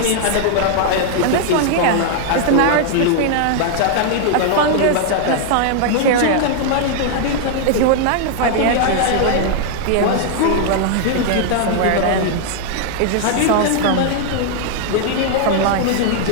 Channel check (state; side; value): different; both; correlation 0.00